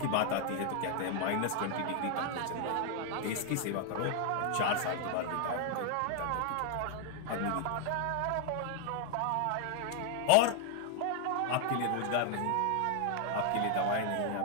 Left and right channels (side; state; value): both; different; correlation 0.00